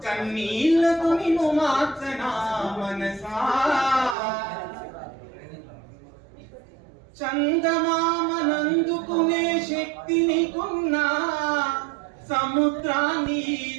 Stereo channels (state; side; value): drops out; left; at 4.2 s